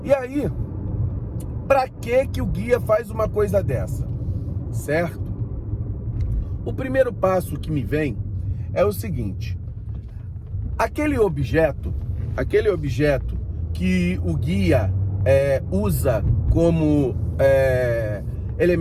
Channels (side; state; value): both; identical; correlation 1.00